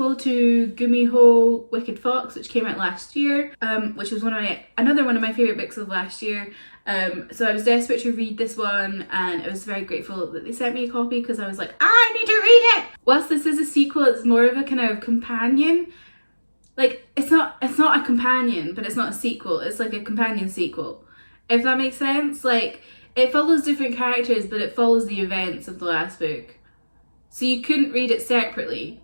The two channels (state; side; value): inverted; both; correlation -1.00